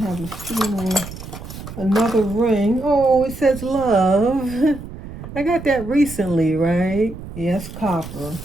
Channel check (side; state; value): right; noise; rumble, 12 dB below the sound